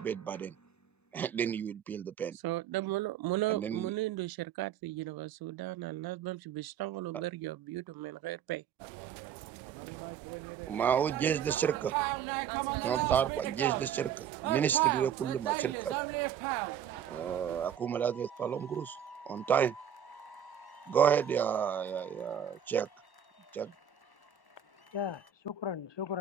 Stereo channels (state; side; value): quieter; left; 8.8 dB